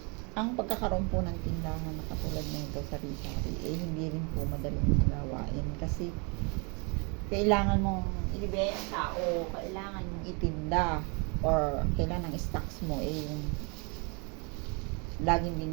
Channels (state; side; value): quieter; left; 33.1 dB